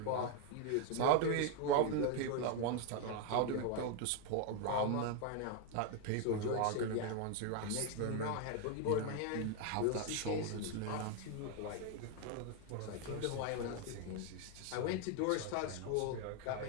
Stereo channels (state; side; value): different; both; correlation 0.01